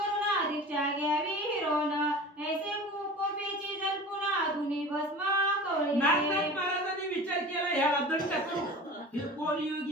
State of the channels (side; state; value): both; normal; correlation 0.37